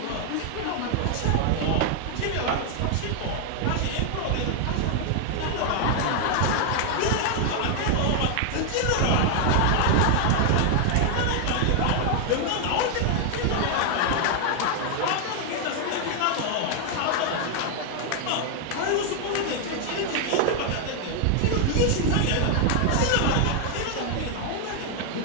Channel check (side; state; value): both; different; correlation 0.00